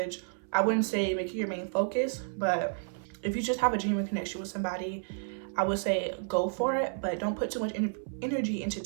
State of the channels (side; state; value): left; silent; 57 dB below the other